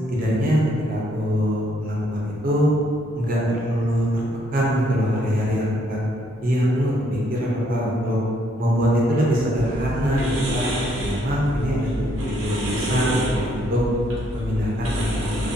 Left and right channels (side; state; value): left; noise; rumble, 24 dB below the sound